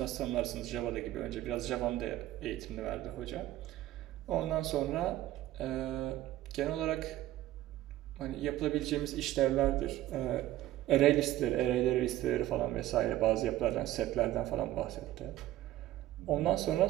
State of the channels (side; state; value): left; quieter; 14.5 dB